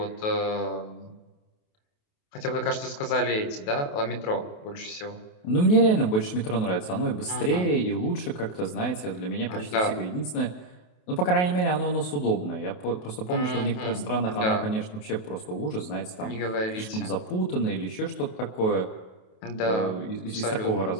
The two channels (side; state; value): right; late; 28 ms